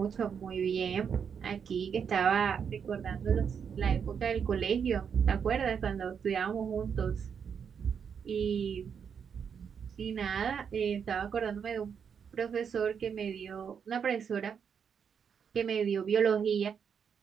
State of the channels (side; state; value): left; quieter; 7.1 dB